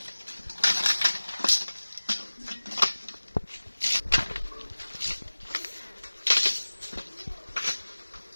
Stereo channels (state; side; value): inverted; both; correlation -1.00